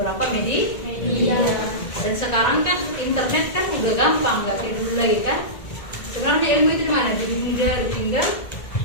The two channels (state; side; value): late; right; 1.8 ms